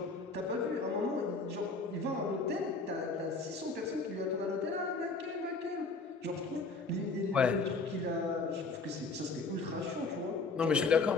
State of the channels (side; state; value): right; quieter; 3.9 dB